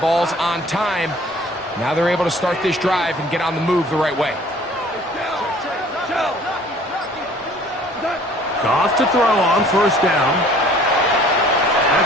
ball's on time. Now they're able to start this drive and get on the move the right way. Goff to throw on first down.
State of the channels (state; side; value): normal; both; correlation 0.53